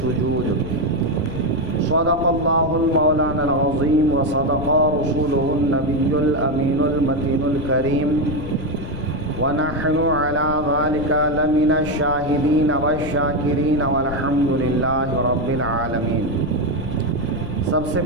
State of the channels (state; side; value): noise; left; rumble, 10 dB below the sound